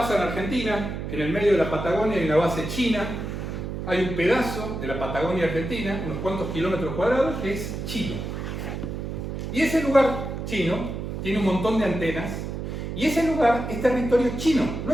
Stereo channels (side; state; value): right; noise; hum, 5 dB below the sound